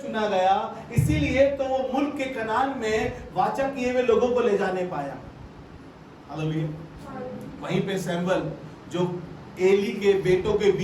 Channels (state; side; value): identical; both; correlation 1.00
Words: चुना गया, इसीलिए तो वो मुल्क के कनान में वाचा किए हुए लोगों को ले जाने पाया। हालेलुया। वहीं पे सैमुएल जो एली के बेटों के